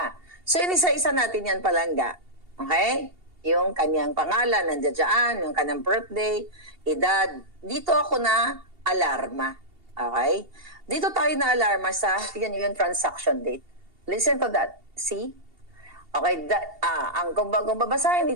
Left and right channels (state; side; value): late; left; 2.7 ms